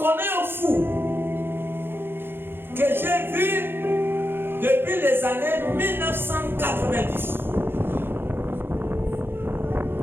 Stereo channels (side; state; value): left; late; 0.10 ms